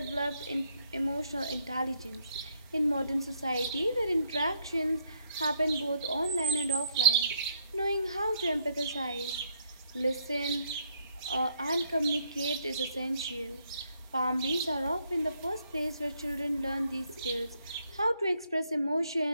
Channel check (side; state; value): both; inverted; correlation -0.70